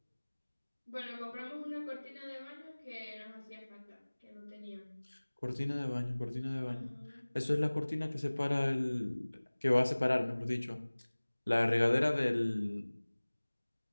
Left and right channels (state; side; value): inverted; both; correlation -1.00